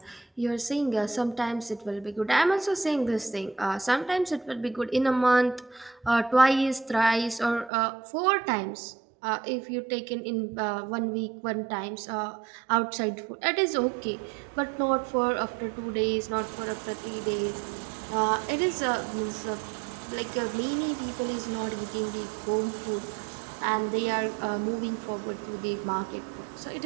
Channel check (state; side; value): drops out; left; at 7.7 s